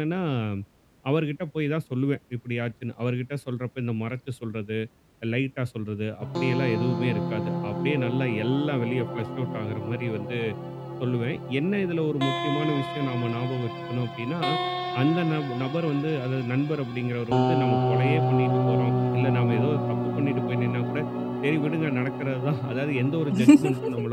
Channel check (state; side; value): identical; both; correlation 1.00